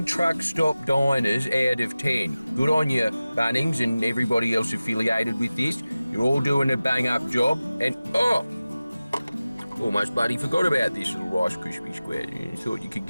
truck stop diners out of 10. Good on you, Bunnings, and everybody else affiliated with this. You're all doing a bang-up job, and almost bloody forgot about this little Rice Krispie square. You thought you could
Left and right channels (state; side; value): inverted; both; correlation -0.96